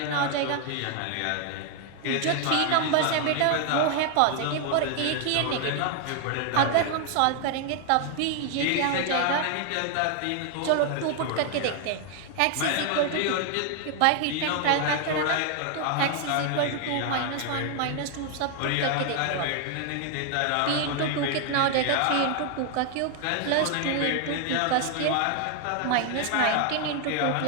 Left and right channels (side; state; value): both; different; correlation 0.00